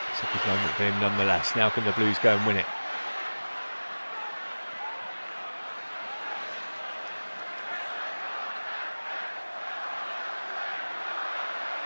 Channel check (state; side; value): inverted; both; correlation -1.00